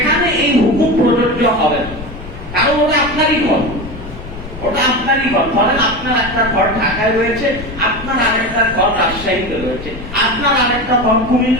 এই হুকুম প্রযোজ্য হবে না, কারণ ওটা আপনারই ঘর, ওটা আপনারই ঘর। ধরেন আপনার একটা ঘর ঢাকায় রয়েছে, আপনার আরেকটা ঘর রাজশাহীতে রয়েছে, আপনার আরেকটা ঘর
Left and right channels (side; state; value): left; noise; rumble, 12 dB below the sound